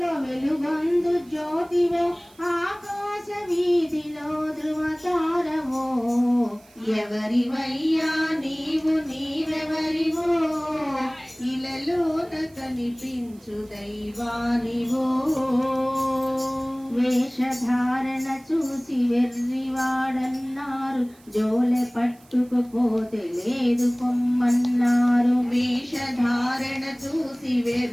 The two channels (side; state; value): right; noise; hiss, 28 dB below the sound